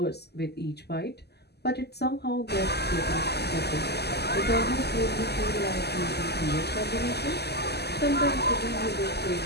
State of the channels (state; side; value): late; right; 0.48 ms